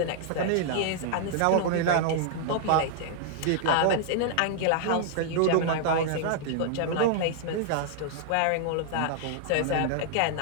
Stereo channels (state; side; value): different; both; correlation -0.01